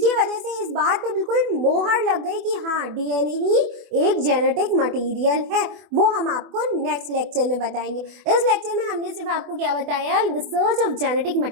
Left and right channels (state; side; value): late; left; 24 ms